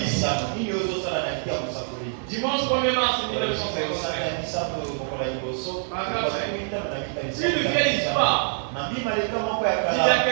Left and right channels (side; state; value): left; silent; 62 dB below the other